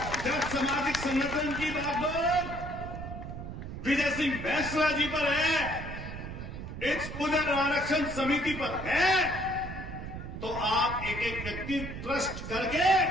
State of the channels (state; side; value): noise; right; rumble, 8 dB below the sound